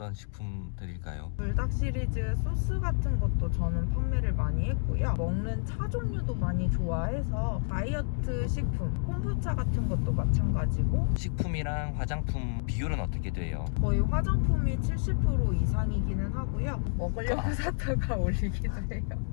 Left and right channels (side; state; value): right; silent; digital silence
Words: 식품들일까요? 불닭 시리즈 소스 같은 것도 저는 판매를 많이 했고요. 먹는 차 종류도 많이 좋아해서 다이어트 식품, 콤부차 같은 것도 마찬가지고 식품 제품이랑 화장품 비율은 어떻게 돼요? 거의 화장품이 70% 이상이기는 하고요. 먹으려고 샀다가 올리기도